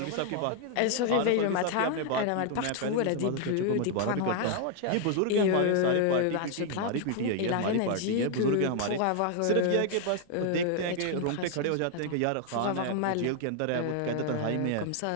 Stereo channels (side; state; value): both; different; correlation 0.00